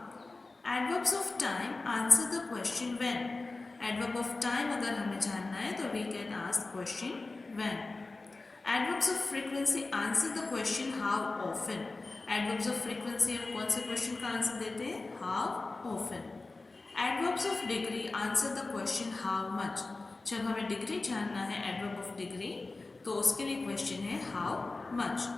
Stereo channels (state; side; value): quieter; right; 3.4 dB